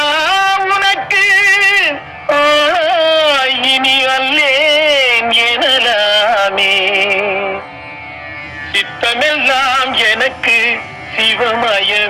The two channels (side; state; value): both; identical; correlation 1.00